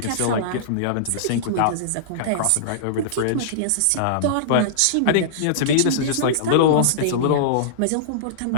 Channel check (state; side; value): different; both; correlation -0.02